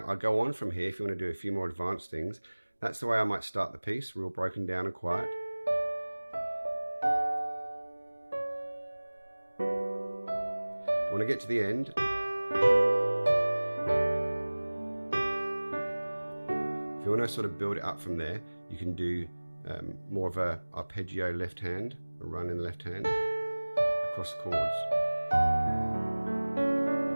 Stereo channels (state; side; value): inverted; both; correlation -1.00